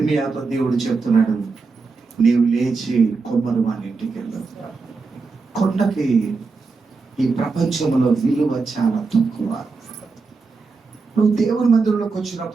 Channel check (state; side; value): quieter; left; 4.3 dB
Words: దేవుడు చెప్తున్నాడు, నీవు లేచి కొమ్మరు వాని ఇంటికి వెళ్ళు. కొండకి ఈ ప్రపంచంలో విలువ చాలా తక్కువ. నువ్వు దేవుని మందిరంలోకి